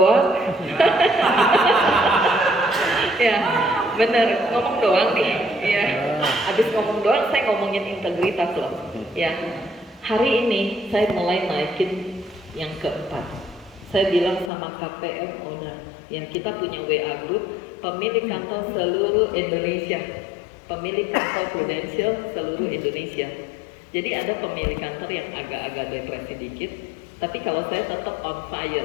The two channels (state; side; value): drops out; right; at 14.5 s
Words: Ya, bener, ngomong doang nih. Ya. Habis ngomong doang, saya ngomongin integritas loh. Ya. Hari ini saya mulai naikin yang keempat. Saya bilang sama KPM owner, yang kita punya WA group, pemilik kantor seluruh Indonesia, pemilik kantor Prudential seluruh Indonesia. Jadi ada pemilik kantor yang agak-agak depresi dikit, tapi kalau saya tetap on